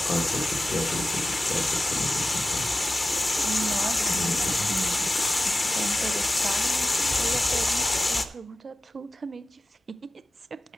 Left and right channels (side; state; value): both; normal; correlation 0.94